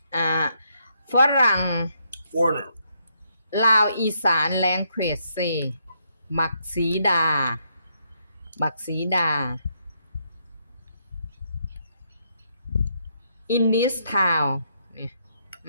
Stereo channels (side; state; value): both; inverted; correlation -0.75